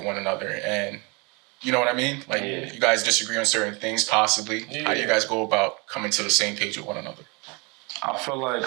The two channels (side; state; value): left; quieter; 29.7 dB